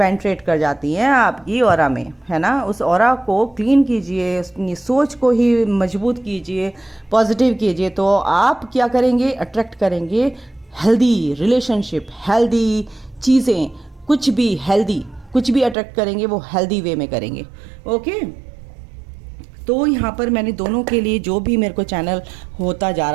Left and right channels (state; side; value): drops out; left; at 15.8 s